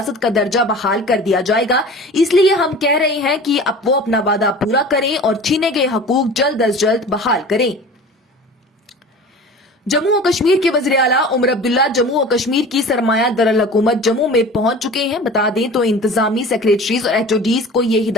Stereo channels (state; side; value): normal; both; correlation 0.40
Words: کا درجہ بحال کر دیا جائے گا، اس لیے ہم کہہ رہے ہیں کہ اب وہ اپنا وعدہ پورا کریں اور چھینے گئے حقوق جلد از جلد بحال کریں۔ جموں و کشمیر کے وزیر اعلیٰ عمر عبداللہ جموں و کشمیر کی سرمایہ دارالحکومت جموں میں پہنچ چکے ہیں۔ بتا دیں تو انتظامی سیکریٹریز اور ایچ.او.ڈیز کو یہ